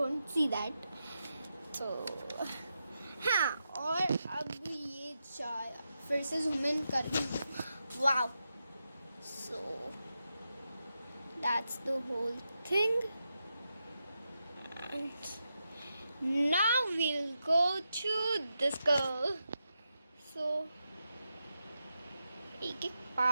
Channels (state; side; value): inverted; both; correlation -0.87